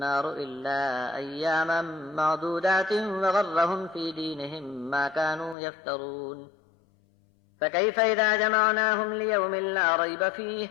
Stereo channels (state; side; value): drops out; right; at 5.6 s